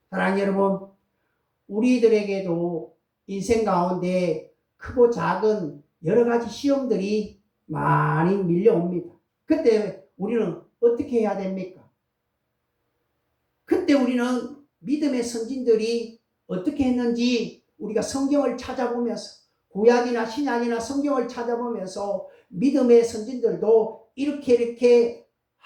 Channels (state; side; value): identical; both; correlation 1.00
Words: 사랑하는 여러분, 우리들에게도 인생 가운데 크고 작은 여러 가지 시험들이 많이 밀려옵니다. 그때 우리는 어떻게 해야 됩니까? 그때 우리는 믿음의 선진들이 어떻게 했는지 우리가 성경을 찾아보면서 구약이나 신약이나 성경을 찾아보면서 믿음의 선진들도 이렇게